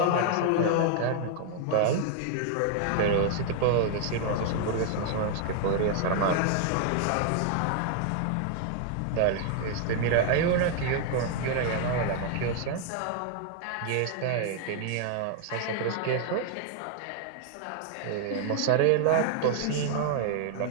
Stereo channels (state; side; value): different; both; correlation 0.00